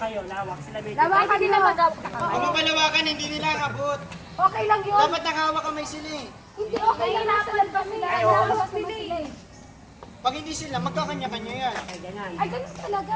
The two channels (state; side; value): identical; both; correlation 1.00